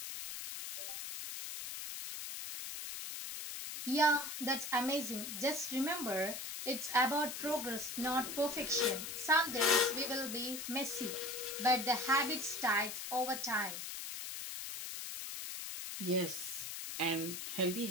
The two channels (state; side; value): noise; left; hiss, 6 dB below the sound